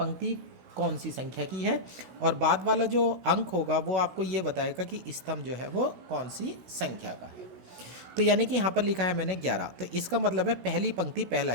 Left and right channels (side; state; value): left; late; 16 ms